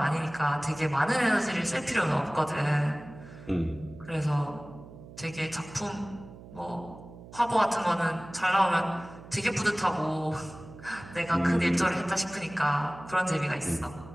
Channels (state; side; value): noise; right; hum, 17 dB below the sound